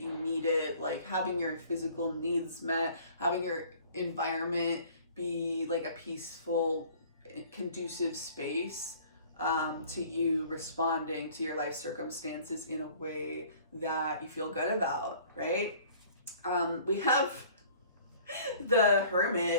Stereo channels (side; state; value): both; inverted; correlation -0.51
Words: need it, like having your physical needs met, having your environment be like a peaceful, conducive space to you responding to your life circumstances in a way that you feel good about, right? We have the